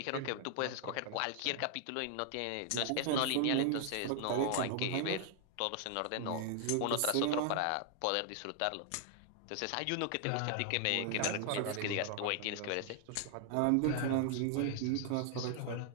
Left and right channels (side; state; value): both; different; correlation 0.00